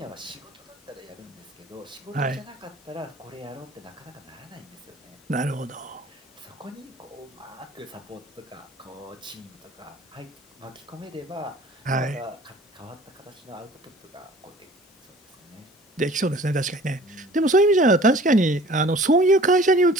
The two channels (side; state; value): both; normal; correlation 0.48